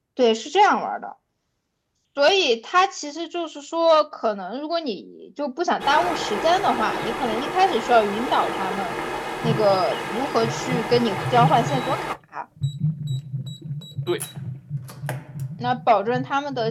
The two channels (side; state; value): both; identical; correlation 1.00